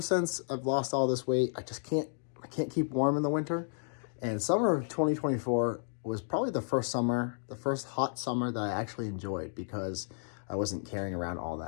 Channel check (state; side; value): silent; right; digital silence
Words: since I've lost all this weight, I can't keep warm in the winter. And summer of 2024 was probably the first hot summer that I actually enjoyed because I wasn't carrying around all